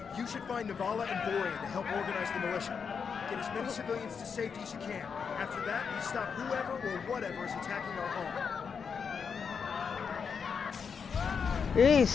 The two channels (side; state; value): right; quieter; 6.2 dB